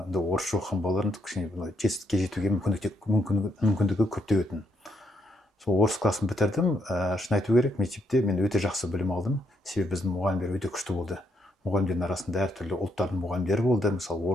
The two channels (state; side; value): normal; both; correlation 0.77